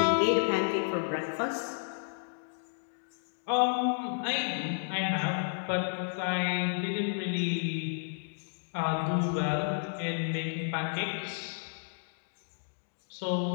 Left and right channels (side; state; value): right; silent; digital silence